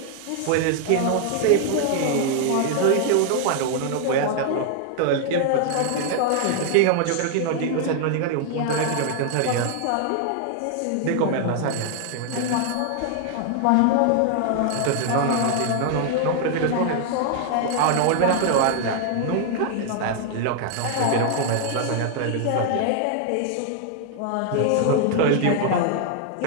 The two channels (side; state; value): both; different; correlation 0.00